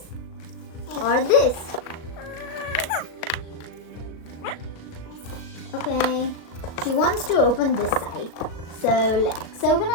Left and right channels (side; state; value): right; late; 37 ms